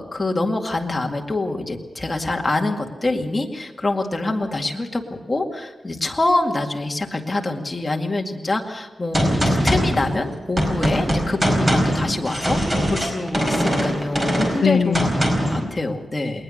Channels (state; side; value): normal; both; correlation 0.93